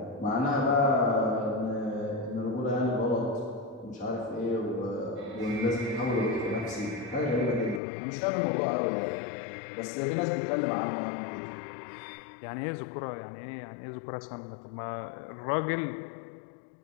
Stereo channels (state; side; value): drops out; right; at 7.8 s